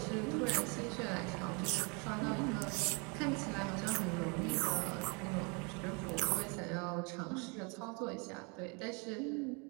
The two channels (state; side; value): quieter; left; 32.6 dB